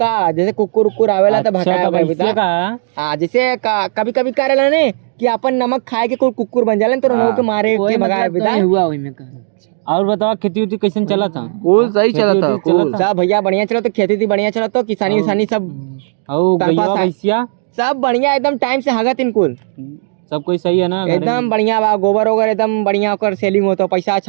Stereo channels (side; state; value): left; silent; digital silence